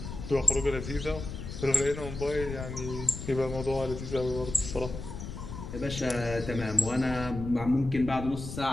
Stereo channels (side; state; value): left; noise; rumble, 8 dB below the sound